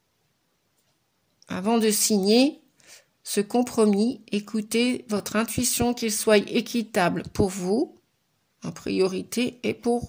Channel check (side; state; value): both; identical; correlation 1.00